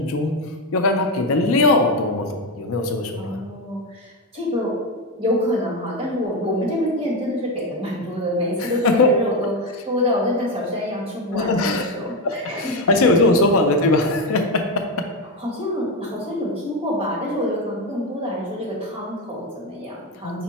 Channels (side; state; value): both; normal; correlation 0.11